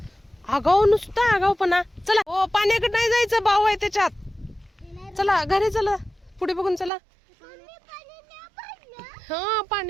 आगाव नुसता आगावपणा. चला हो पाण्याकडे नाही जायचं, भाऊ आहे त्याच्यात. चला घरी चला, पुढे बघून चला. हा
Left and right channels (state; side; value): drops out; left; at 6.9 s